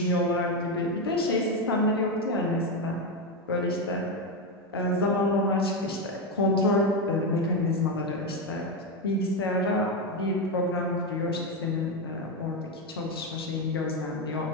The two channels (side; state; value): both; normal; correlation 0.10